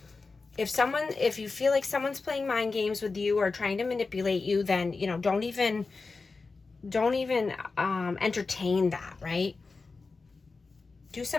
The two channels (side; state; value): right; quieter; 4.1 dB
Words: If you feel like someone's playing mind games with you or trying to manipulate you, then, you know, don't even entertain that, right? Do